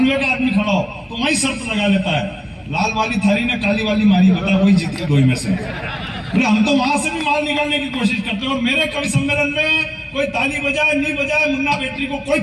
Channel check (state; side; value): identical; both; correlation 1.00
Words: का आदमी खड़ा हो तो वही शर्त लगा लेता है, लाल वाली थारी ने काली वाली मारी, बता वही जीत के 2 में से। हम तो वहां से भी माल निकालने की कोशिश करते हैं। और मेरे कवि सम्मेलन में कोई ताली बजाए नहीं बजाए, मुन्ना बेटरी को कोई